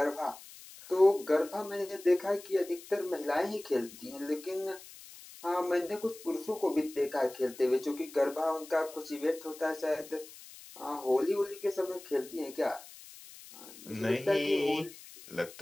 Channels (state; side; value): noise; left; hiss, 18 dB below the sound